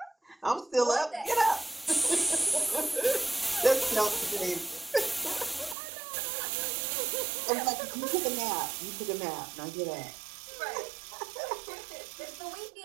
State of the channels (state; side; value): drops out; left; at 5.8 s